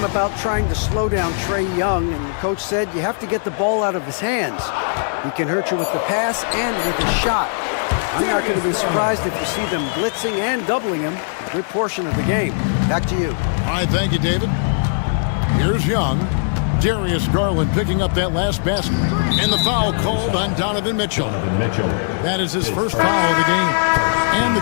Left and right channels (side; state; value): right; silent; digital silence